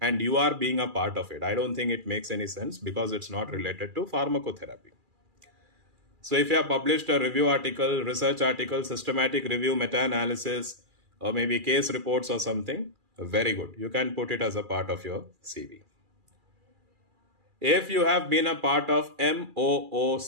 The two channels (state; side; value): late; left; 2.4 ms